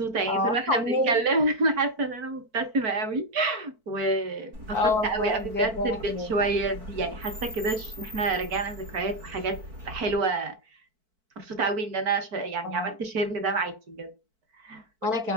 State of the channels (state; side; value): late; left; 4.5 ms